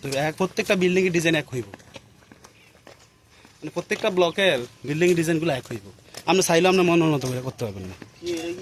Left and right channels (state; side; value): identical; both; correlation 1.00